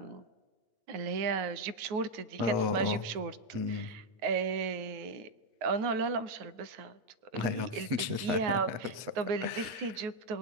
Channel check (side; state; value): left; late; 8.4 ms